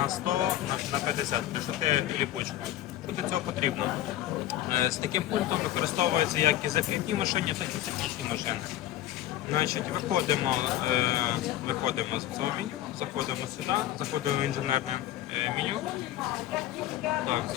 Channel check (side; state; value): right; quieter; 13.5 dB